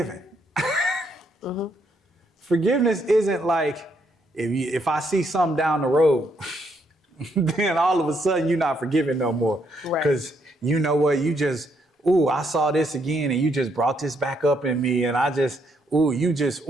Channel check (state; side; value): normal; both; correlation 0.74